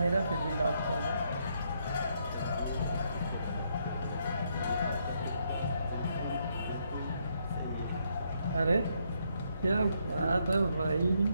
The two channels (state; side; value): inverted; both; correlation -0.75